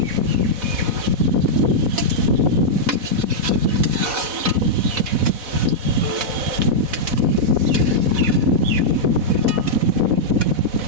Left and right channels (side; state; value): left; late; 4.1 ms